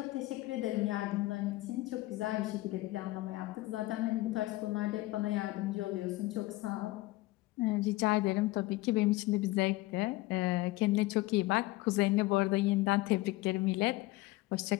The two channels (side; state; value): right; quieter; 19.3 dB